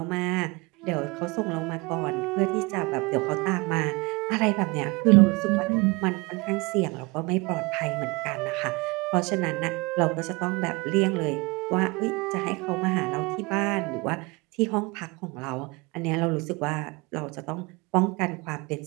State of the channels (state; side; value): quieter; left; 26.1 dB